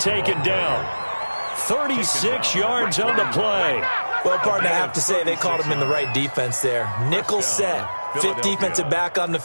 down. 36 yards on the play. Well, partner, I have to say they called him in the right defense there. Nickel set. 5th defensive back on the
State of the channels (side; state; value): both; inverted; correlation -1.00